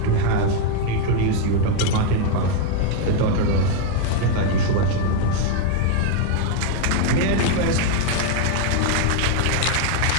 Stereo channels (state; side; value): different; both; correlation 0.00